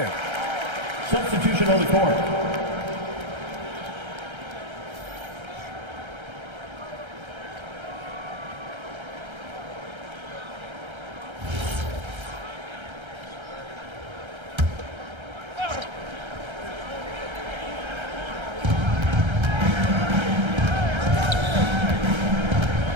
Substitution on the court.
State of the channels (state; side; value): late; left; 1.3 ms